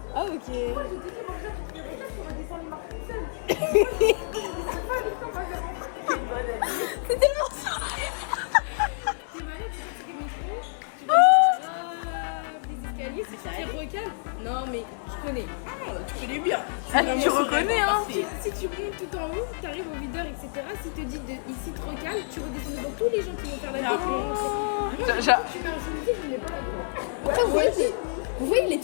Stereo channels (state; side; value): silent; right; digital silence